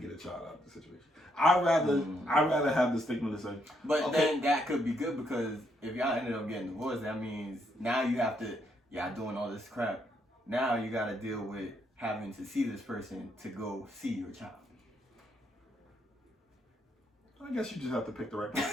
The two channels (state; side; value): normal; both; correlation 0.75